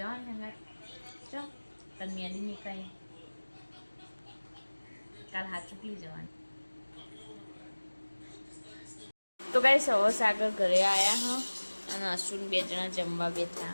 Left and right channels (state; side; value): inverted; both; correlation -1.00